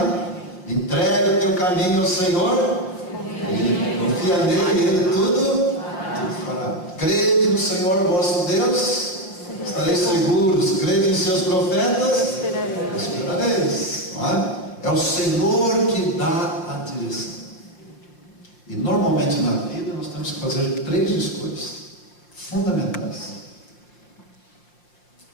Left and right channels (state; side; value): late; right; 5.6 ms